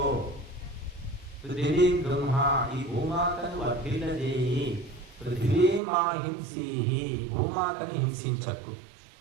పృథివీం బ్రహ్మ, ఈ భూమాతను వర్ధిల్లజేయి. పృథివీమాహింసి, భూమాతను హింసించకు.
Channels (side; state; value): left; drops out; at 5.8 s